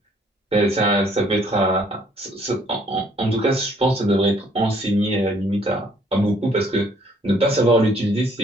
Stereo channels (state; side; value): normal; both; correlation 0.63